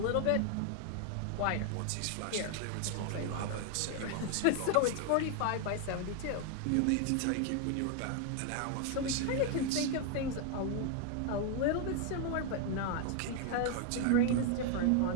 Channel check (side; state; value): both; different; correlation 0.00